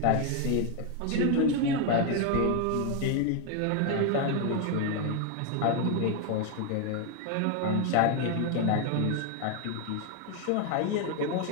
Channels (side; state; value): both; different; correlation 0.01